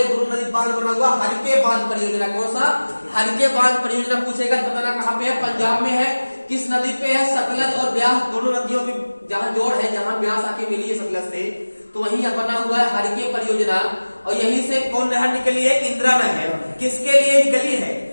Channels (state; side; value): inverted; both; correlation -1.00